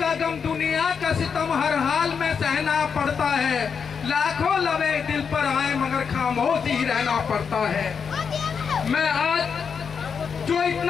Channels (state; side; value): quieter; right; 6.3 dB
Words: गम, दुनिया का सितम हर हाल में सहना पड़ता है। लाखों लवे दिल पर आए मगर खामोश ही रहना पड़ता है। मैं आज जो